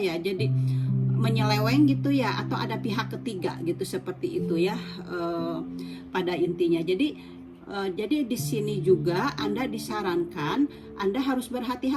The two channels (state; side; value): identical; both; correlation 1.00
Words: menyeleweng gitu ya, atau ada pihak ketiga gitu, seperti itu ya pada intinya. Jadi di sini juga Anda disarankan Anda harus